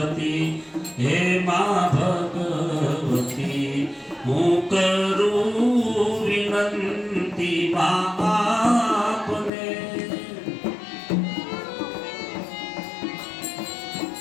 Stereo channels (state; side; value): drops out; right; at 9.5 s